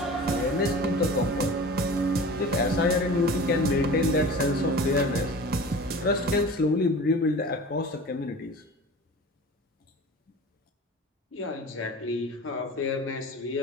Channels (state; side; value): normal; both; correlation 0.38